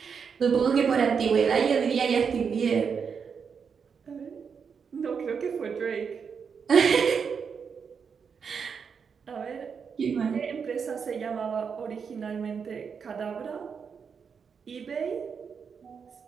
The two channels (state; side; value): quieter; left; 6.3 dB